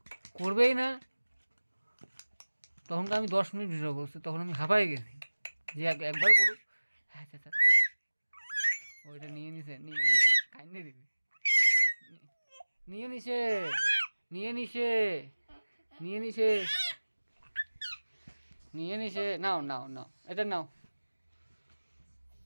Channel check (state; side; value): inverted; both; correlation -1.00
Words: করবেই না। তখন তো আমি 10 মিনিট ভিডিও করছি, তখন আমি হাঁপাই গেছি যে একবার করুক। হ্যাঁ আচ্ছা আচ্ছা, ওইটা নিয়ে নিছে, কাইন্ডে দিবি, নিয়ে নিছে, নিয়ে নিছে, নিয়ে নিছে, নিয়ে নিছে। নাও নাও নাও, এটা নাও,